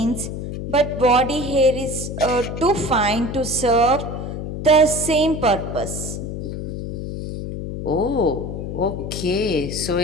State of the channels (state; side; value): noise; left; hum, 6 dB below the sound